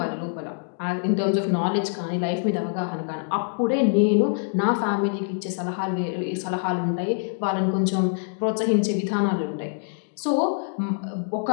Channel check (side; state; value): right; silent; digital silence